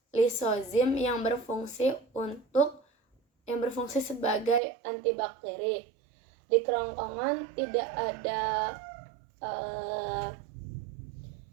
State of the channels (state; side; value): drops out; left; at 4.6 s